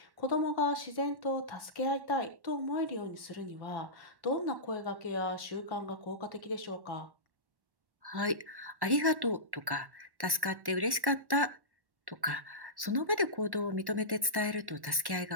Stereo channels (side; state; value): left; late; 1.1 ms